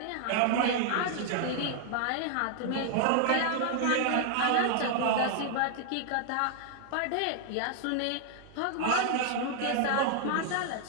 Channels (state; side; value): different; both; correlation 0.00